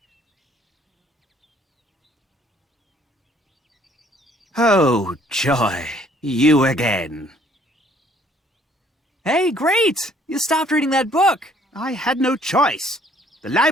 Oh, joy. You again. Hey, great! You stopped reading that book. I had no choice. The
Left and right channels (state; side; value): normal; both; correlation 0.61